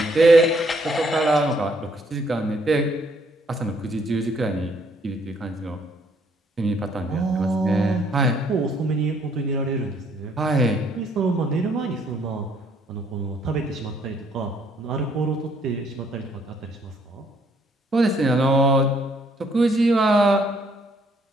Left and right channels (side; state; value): both; normal; correlation 0.67